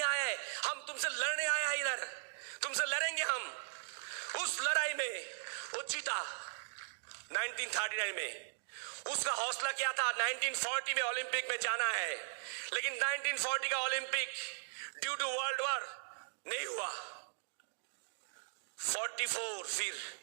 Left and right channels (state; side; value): silent; left; digital silence